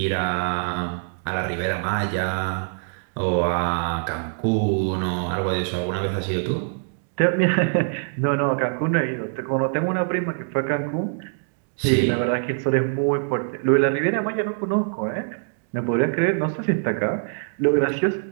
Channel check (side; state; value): left; silent; digital silence